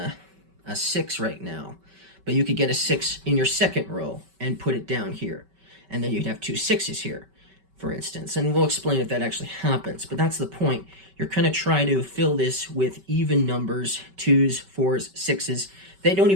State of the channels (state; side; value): late; left; 5.2 ms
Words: 6 right now, but you could get a 6 in your 2nd row and put it down here. And then you'd have 2 6s here, for instance. And we'll explain if that actually happens, but that's the point. You're going to try to fill this with even numbers, 2s, 4s, 6s. They don't